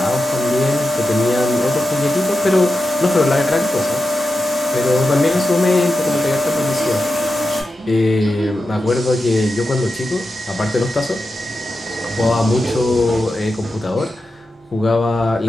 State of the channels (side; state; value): both; normal; correlation 0.90